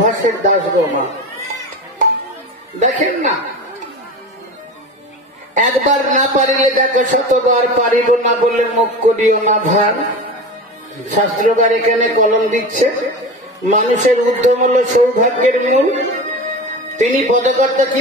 দাস গো মা। দেখেন না, একবার না পারিলে দেখো শতবার পারিব না বলে মুখ করিও না ভার। শাস্ত্রকার এখানে কলম দিচ্ছে, মানুষের উদ্যম হলো সৌভাগ্যের মূল। তিনি পদকর্তা কি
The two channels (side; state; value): both; normal; correlation 0.29